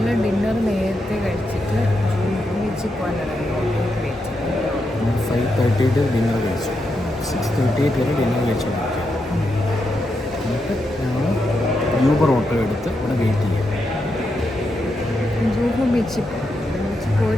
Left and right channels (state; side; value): normal; both; correlation 0.84